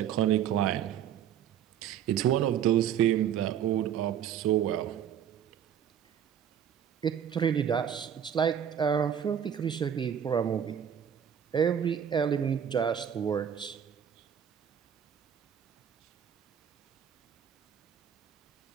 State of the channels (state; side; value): quieter; left; 9.0 dB